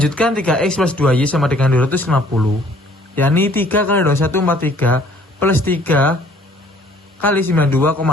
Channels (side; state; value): both; normal; correlation 0.58